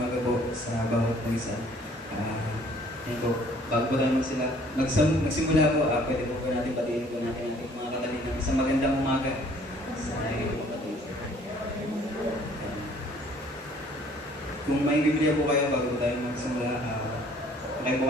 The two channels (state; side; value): normal; both; correlation 0.57